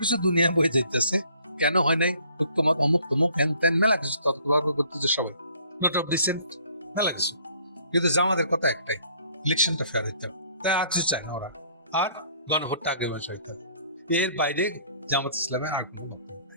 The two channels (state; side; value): inverted; both; correlation -0.59